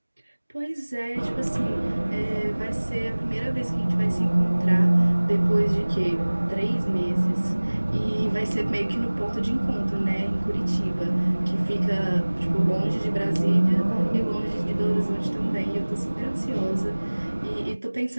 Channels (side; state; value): both; inverted; correlation -1.00